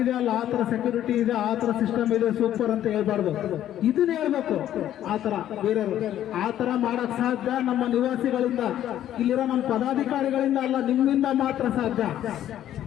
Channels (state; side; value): quieter; right; 11.7 dB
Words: ಅಲ್ಲ, ಆ ತರ ಸೆಕ್ಯೂರಿಟಿ ಇದೆ, ಆ ತರ ಸಿಸ್ಟಮ್ ಇದೆ, ಸೂಪರ್ ಅಂತ ಹೇಳ್ಬಾರ್ದು. ಇದನ್ನ ಹೇಳ್ಬೇಕು. ಆ ತರ ಬೇರೆಯವರು ಆ ತರ ಮಾಡಕ್ ಸಾಧ್ಯ ನಮ್ಮ ನಿವಾಸಿಗಳಿಂದ, ಇಲ್ಲಿರೋ ನಮ್ಮ ಪದಾಧಿಕಾರಿಗಳಿಂದ ಅಲ್ಲ, ನಿಮ್ಮಿಂದ ಮಾತ್ರ ಸಾಧ್ಯ.